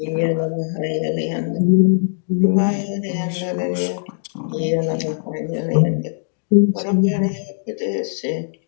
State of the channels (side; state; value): right; silent; digital silence